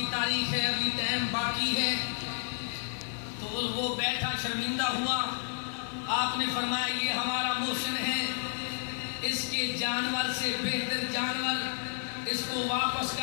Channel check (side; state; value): right; silent; 57 dB below the other